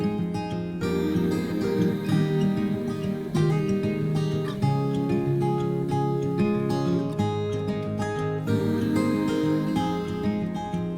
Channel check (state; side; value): identical; both; correlation 1.00